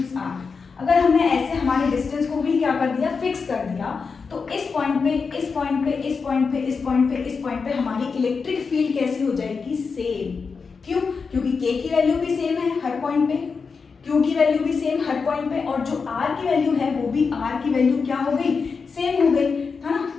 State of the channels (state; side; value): quieter; right; 5.1 dB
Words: r, अगर हमने ऐसे हमारे डिस्टेंस को भी क्या कर दिया, फिक्स कर दिया, तो इस पॉइंट पे, इस पॉइंट पे, इस पॉइंट पे, इस पॉइंट पे, इस पॉइंट पे हमारी इलेक्ट्रिक फील्ड कैसी हो जाएगी, सेम। क्यों, क्योंकि K की वैल्यू भी सेम है हर पॉइंट पे, Q की वैल्यू भी सेम हर पॉइंट पे, और जो R की वैल्यू है वो भी R की वैल्यू क्या हो गई, सेम हो गई, है ना।